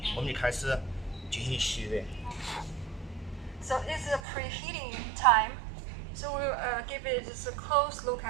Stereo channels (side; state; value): left; drops out; at 4.2 s